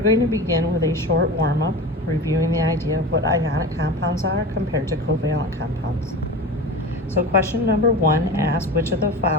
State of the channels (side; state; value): both; normal; correlation 0.30